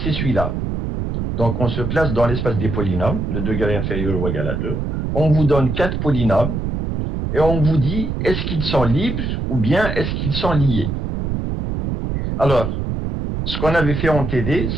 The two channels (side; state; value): right; noise; rumble, 2 dB below the sound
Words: celui-là. Donc, on se place dans l'espace des polynômes, de degré inférieur ou égal à 2. On vous donne 4 polynômes et on vous dit, est-ce qu'ils sont libres ou bien est-ce qu'ils sont liés? Alors, ce qu'on avait fait en TD,